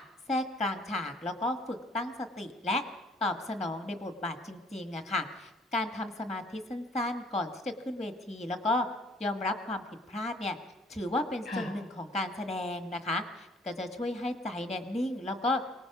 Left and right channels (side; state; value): both; normal; correlation 0.59